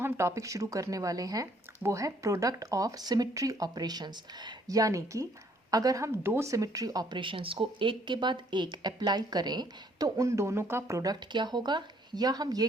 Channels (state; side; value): normal; both; correlation 0.64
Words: टॉपिक शुरू करने वाले हैं वो है प्रोडक्ट ऑफ सिमेट्री ऑपरेशंस। यानी कि अगर हम दो सिमेट्री ऑपरेशंस को एक के बाद एक अप्लाई करें तो उन दोनों का प्रोडक्ट क्या होगा, या हम ये